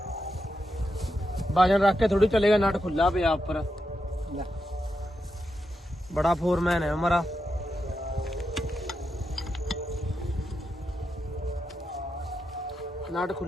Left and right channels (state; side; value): normal; both; correlation 0.86